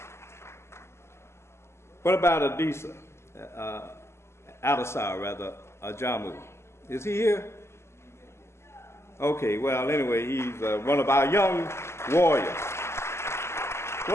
What about Adisa? Adisa, rather, Ajamu. Is he here? Okay, well, anyway, he's one of our young warriors.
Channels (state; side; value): late; right; 0.13 ms